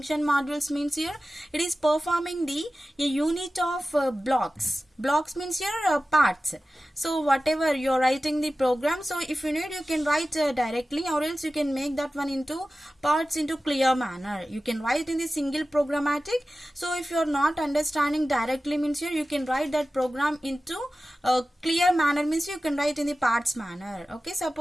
modules means? Here it is performing the a unit of blocks. Blocks means here parts. So whatever you are writing the program, so if you need you can write directly, or else you can make that one into parts into clear manner. You can write in the single programmatic. So if you are not understanding directly means here you can write that program into clear manner, means you can write in the parts manner. Okay,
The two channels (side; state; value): both; normal; correlation 0.95